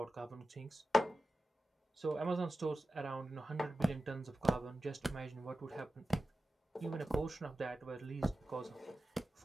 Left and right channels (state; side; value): normal; both; correlation 0.94